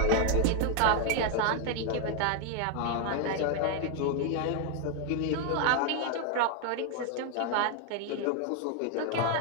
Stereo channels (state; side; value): different; both; correlation 0.00